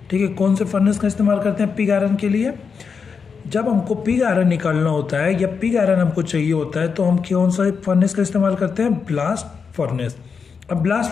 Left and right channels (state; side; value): quieter; right; 5.7 dB